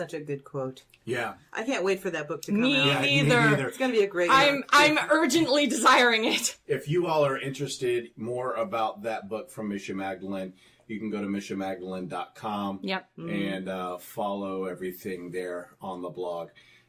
a good quote. Yeah. I can't wait for that book to come Me out. neither. It's going to be a great I'm urgently desiring it. If you all are interested more about that book from Misha Magdalene, you can go to mishamagdalene.com Yep. and follow everything there on the blog.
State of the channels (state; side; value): identical; both; correlation 1.00